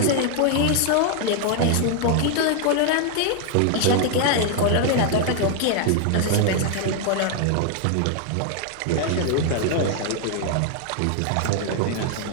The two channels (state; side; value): different; both; correlation 0.00